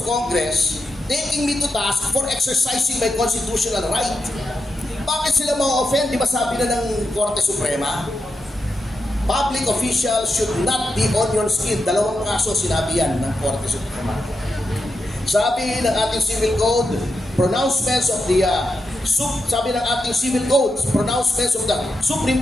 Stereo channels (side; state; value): both; normal; correlation 0.87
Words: Congress, taking me to task for exercising my constitutional right. Bakit sila ma-offend? Di ba sabi na ng Korte Suprema? Public officials should not be onion skin. 2 kaso sinabi yan ng Korte Suprema. Sabi ng ating civil code, pronouncements of the pronouncements of the